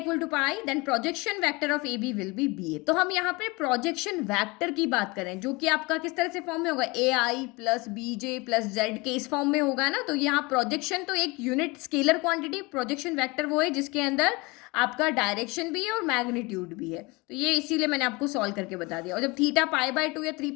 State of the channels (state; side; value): quieter; right; 25.3 dB